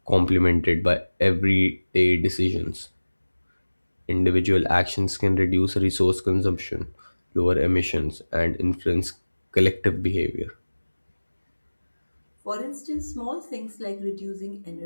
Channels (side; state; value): both; inverted; correlation -1.00